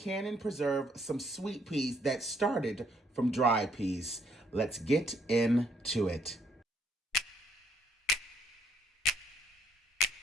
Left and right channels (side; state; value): both; normal; correlation 0.68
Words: and preserve some sweet peas that started from dried peas. Let's get into it.